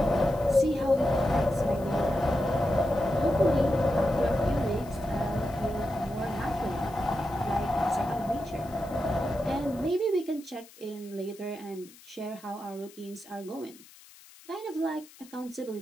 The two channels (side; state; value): left; noise; hiss, 22 dB below the sound